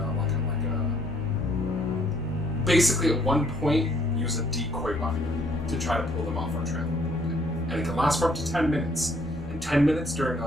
basically at one point, use a decoy weapon to try to pull them off our trail a little bit. And it can last for up to 10 minutes. And 10 minutes during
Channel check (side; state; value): both; normal; correlation 0.65